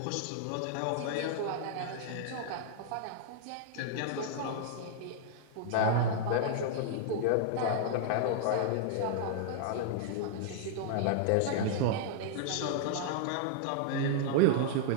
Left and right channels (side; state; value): both; different; correlation -0.01